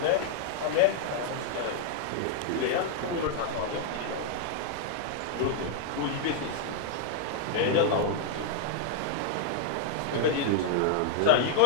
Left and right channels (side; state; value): both; different; correlation -0.01